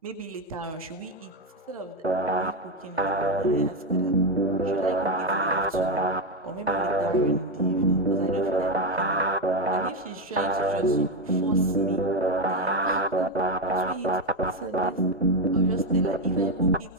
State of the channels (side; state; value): both; normal; correlation 0.09